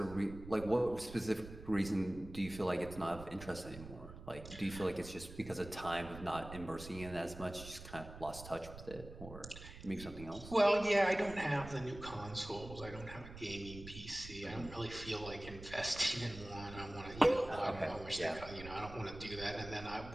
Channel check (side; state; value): right; noise; rumble, 13 dB below the sound